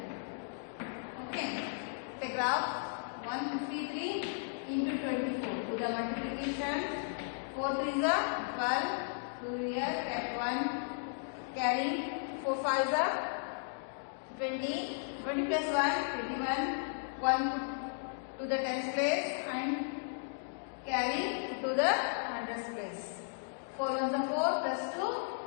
Okay. The graph 153 into 24. Do the multiplication. 4 3 is 12. 2 here kept 1. Carry 4 5 is 20. 20 plus 1 21. 1 put to the tens place and carry to the hundreds place. 4 1s are 4 plus 2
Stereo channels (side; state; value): right; silent; digital silence